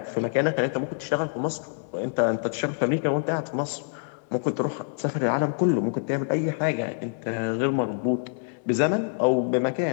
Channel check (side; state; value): right; silent; 61 dB below the other